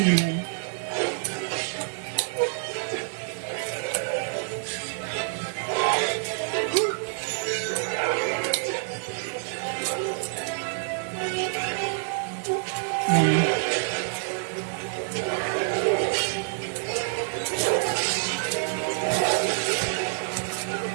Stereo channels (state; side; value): silent; left; 60 dB below the other